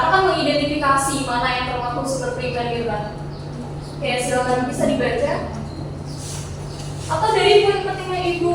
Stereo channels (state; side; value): identical; both; correlation 1.00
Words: kan mengidentifikasi mana yang termasuk sumber primer gitu kan. Oke, silakan bisa dibaca. Atau dari poin pentingnya